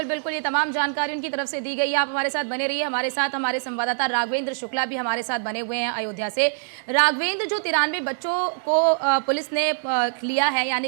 बिल्कुल, ये तमाम जानकारी उनकी तरफ से दी गई है। आप हमारे साथ बने रहिए, हमारे साथ हमारे संवाददाता राघवेंद्र शुक्ला भी हमारे साथ बने हुए हैं अयोध्या से। राघवेंद्र, जो 93 बच्चों को पुलिस ने लिया है,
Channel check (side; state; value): left; silent; 63 dB below the other